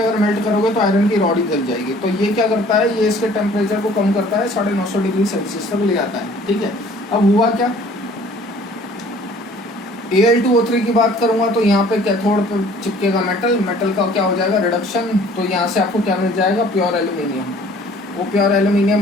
अगर मेल्ट करोगे तो आयरन की रॉड ही जल जाएगी। तो ये क्या करता है, ये इसके टेम्परेचर को कम करता है, 950 डिग्री सेल्सियस तक ले आता है। ठीक है, अब हुआ क्या, Al2O3 की बात करूंगा तो यहाँ पे कैथोड पे चिपकेगा मेटल, मेटल का क्या हो जाएगा रिडक्शन, तो यहाँ से आपको क्या मिल जाएगा प्योर एल्यूमिनियम। वो प्योर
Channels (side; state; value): both; normal; correlation 0.53